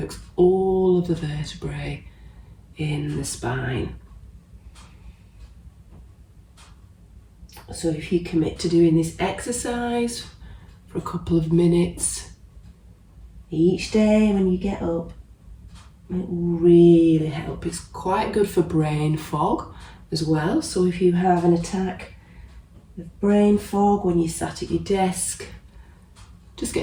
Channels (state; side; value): identical; both; correlation 1.00